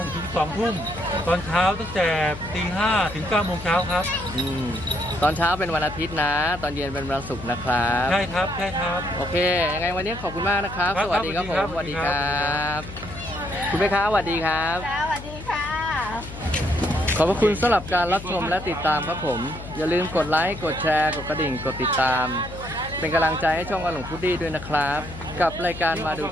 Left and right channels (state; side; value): noise; left; hum, 12 dB below the sound